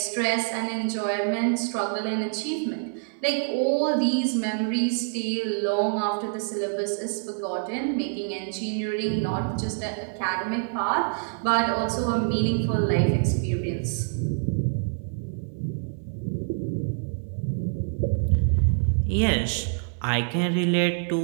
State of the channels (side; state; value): left; silent; 61 dB below the other